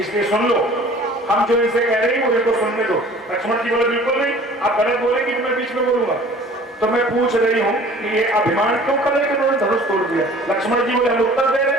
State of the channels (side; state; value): both; normal; correlation 0.48